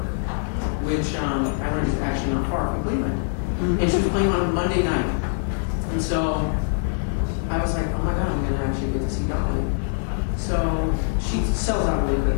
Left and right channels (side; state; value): right; silent; digital silence